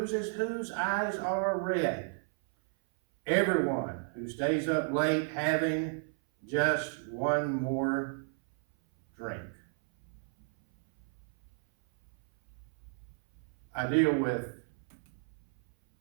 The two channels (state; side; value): silent; left; 56 dB below the other